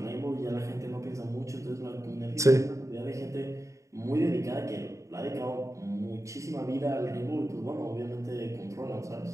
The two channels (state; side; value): late; left; 0.15 ms